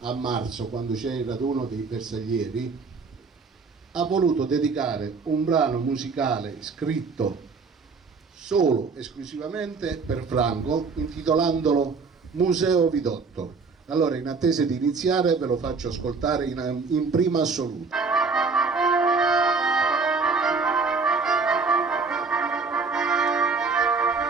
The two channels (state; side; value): quieter; left; 4.6 dB